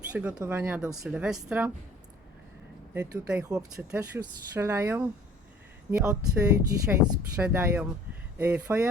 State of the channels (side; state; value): both; normal; correlation 0.51